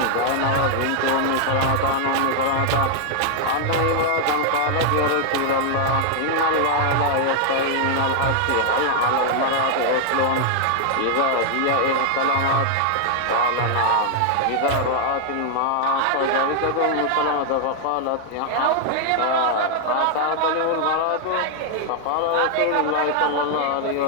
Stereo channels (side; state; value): both; different; correlation 0.00